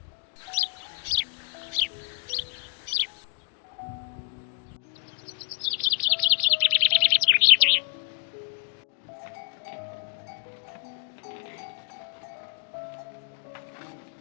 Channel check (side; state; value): right; silent; digital silence